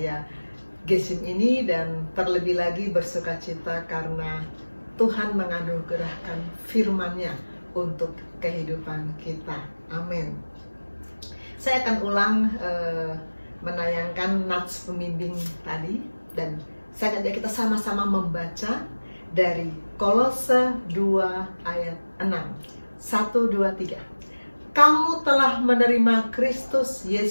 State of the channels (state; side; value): inverted; both; correlation -1.00